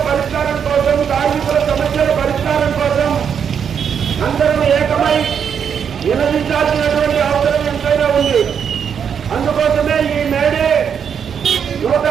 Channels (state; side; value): quieter; left; 7.5 dB